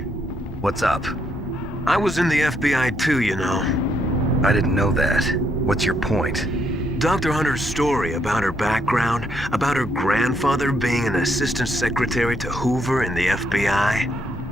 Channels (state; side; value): normal; both; correlation 0.74